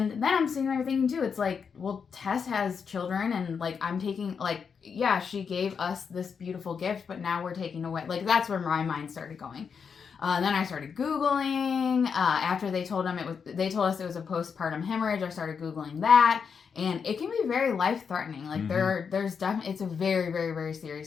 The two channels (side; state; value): right; quieter; 6.3 dB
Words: then I'm sitting there thinking too, it's like, well, Tess has children, and like I'm taking, like, yeah, she gave us this beautiful gift, but now we're taking away, like, that's where my mind started going. Then I started Googling. After they told us it was a postpartum hemorrhage, I started Googling that, and it can be very life-threatening. Like there's definitely, it's a very, very, very